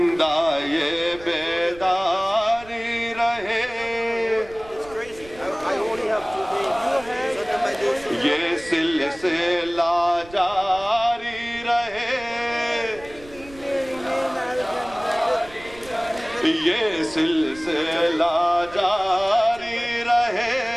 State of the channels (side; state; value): right; noise; rumble, 21 dB below the sound